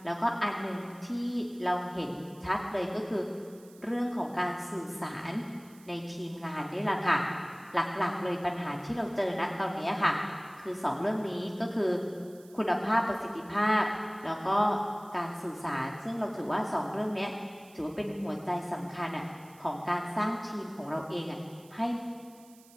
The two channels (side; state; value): right; noise; hiss, 25 dB below the sound